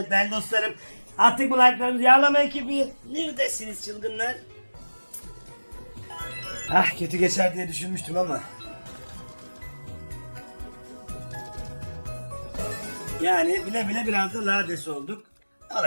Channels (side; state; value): both; inverted; correlation -1.00